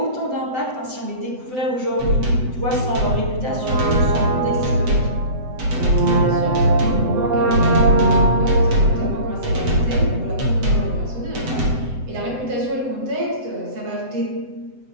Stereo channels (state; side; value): late; left; 7.9 ms